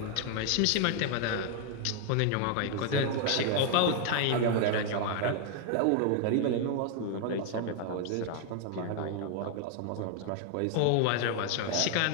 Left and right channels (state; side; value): different; both; correlation 0.00